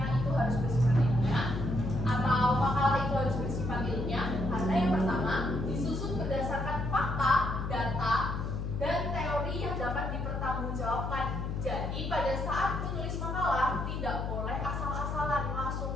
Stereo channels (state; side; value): noise; left; hum, 3 dB below the sound